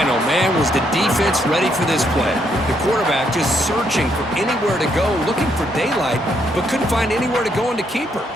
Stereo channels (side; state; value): both; normal; correlation 0.74